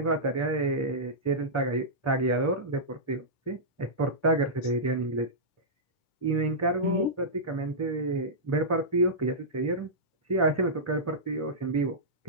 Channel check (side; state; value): right; late; 10 ms